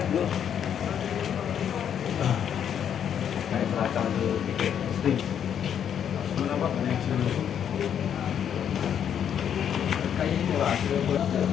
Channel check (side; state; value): right; quieter; 8.8 dB